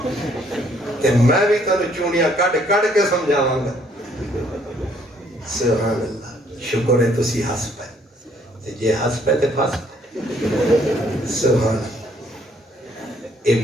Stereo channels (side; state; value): both; normal; correlation 0.65